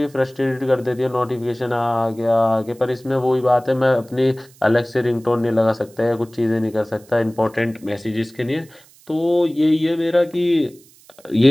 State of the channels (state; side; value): noise; right; hiss, 27 dB below the sound